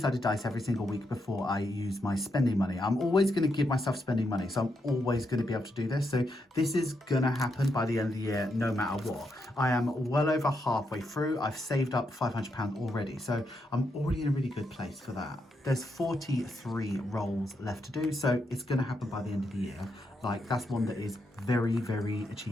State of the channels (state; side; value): normal; both; correlation 0.81